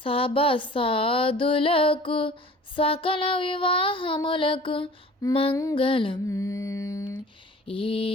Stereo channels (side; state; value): both; normal; correlation 0.45